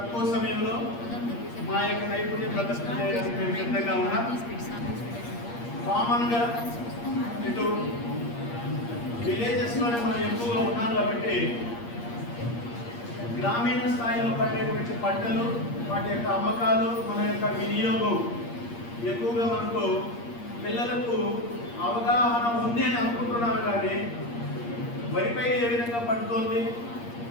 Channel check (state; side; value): late; right; 8.5 ms